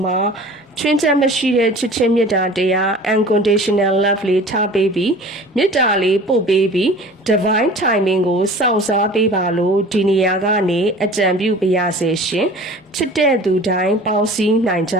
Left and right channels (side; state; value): both; normal; correlation 0.43